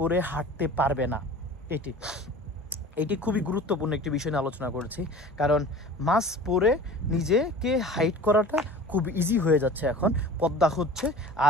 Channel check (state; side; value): normal; both; correlation 0.40